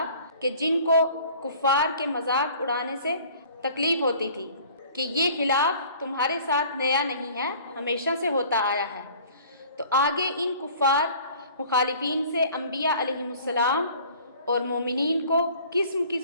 کہ جن کو کفار کے مذاق اڑانے سے تکلیف ہوتی تھی کہ یہ خلاف تمہارے ساتھ نیا نہیں ہے، ہمیشہ سے ہوتا آیا ہے۔ تو آگے ان کفار مخالفین سے انبیاء علیہم السلام اور مومنین کو قسم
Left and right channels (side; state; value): both; inverted; correlation -0.50